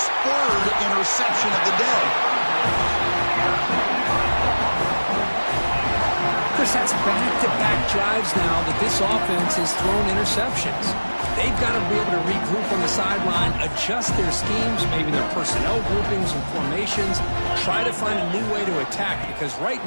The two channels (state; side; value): inverted; both; correlation -1.00